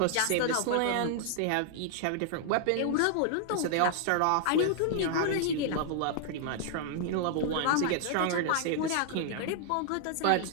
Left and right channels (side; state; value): both; different; correlation -0.01